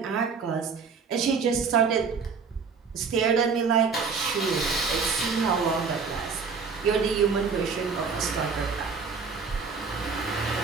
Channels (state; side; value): quieter; left; 5.4 dB